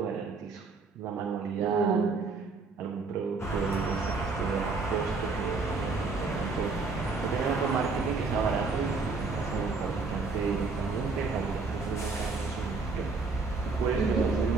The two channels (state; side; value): quieter; left; 4.2 dB